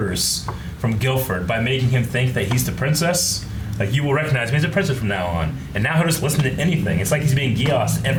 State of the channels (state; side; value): identical; both; correlation 1.00